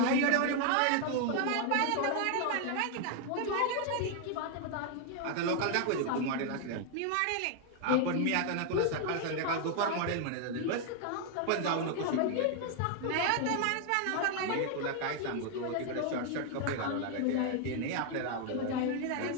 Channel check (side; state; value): both; different; correlation 0.00